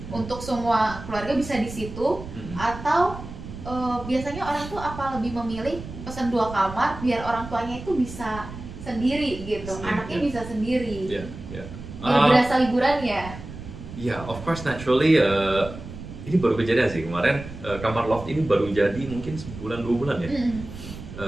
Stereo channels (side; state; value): right; noise; rumble, 12 dB below the sound